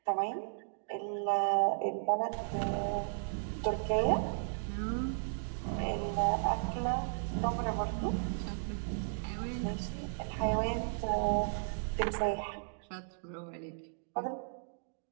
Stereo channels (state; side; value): silent; left; digital silence